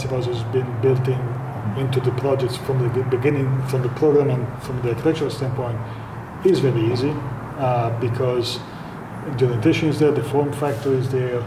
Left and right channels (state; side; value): identical; both; correlation 1.00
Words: house has been built into the projects from the beginning, from the program and from the architectural standpoint, is very easy because the orientation is there, the form factor is there,